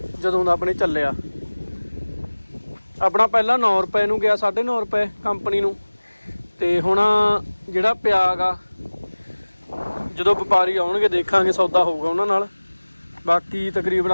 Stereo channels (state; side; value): inverted; both; correlation -1.00